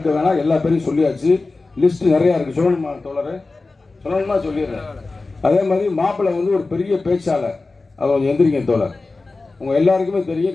வேணாம், எல்லா பேரையும் சொல்லியாச்சு. லிஸ்ட் நிறையா இருக்குது. சொல்லணுமா தோழர்? சொல்லணுமா? சொல்லிடுறேன். அதே மாதிரி மாப்பிள்ளை ஒரு பெரிய பேச்சாளர், அவர் எந்திரிங்க தோழர். உங்கள் எல்லாருக்குமே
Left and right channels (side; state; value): right; quieter; 3.6 dB